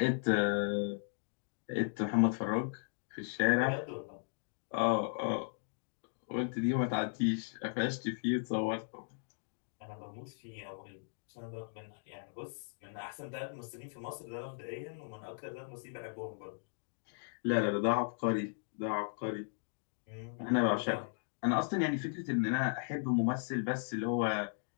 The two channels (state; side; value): silent; right; digital silence